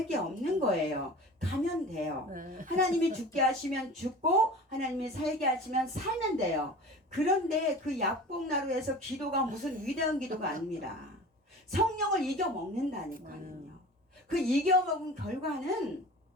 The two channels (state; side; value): normal; both; correlation 0.38